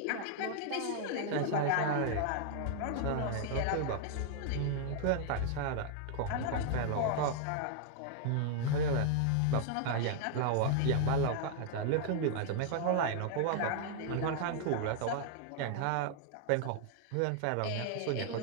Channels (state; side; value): different; both; correlation 0.00